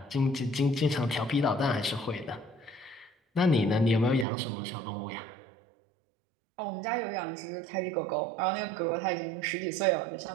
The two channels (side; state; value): left; drops out; at 4.2 s